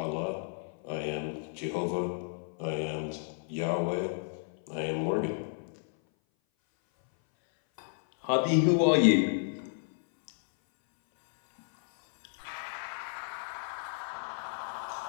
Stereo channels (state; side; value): silent; right; 57 dB below the other